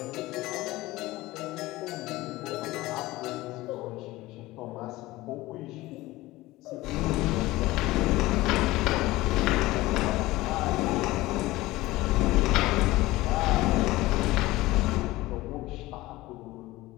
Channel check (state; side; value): quieter; right; 18.7 dB